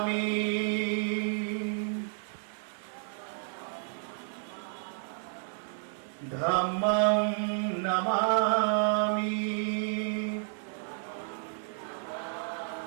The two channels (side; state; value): left; silent; 57 dB below the other